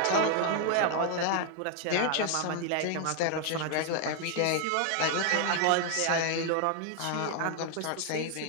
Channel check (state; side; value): different; both; correlation 0.00